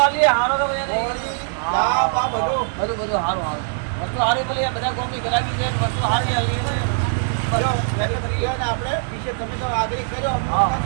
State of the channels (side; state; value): left; silent; 65 dB below the other